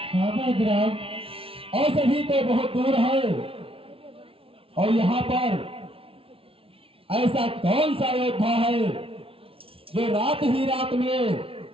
हाँ वैद्यराज। औषधि तो बहुत दूर है, और यहाँ पर ऐसा कौन सा योद्धा है जो रात ही रात में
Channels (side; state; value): left; late; 0.26 ms